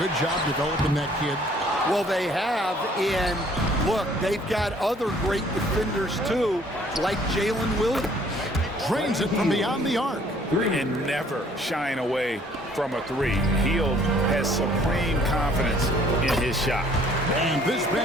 job developing that kid? Well, they have, and look, they've got other great defenders too, like Jalen Williams. Drains it from beyond the arc. And never shying away from a 3. Hield has supreme confidence in his shot. And this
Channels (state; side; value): normal; both; correlation 0.59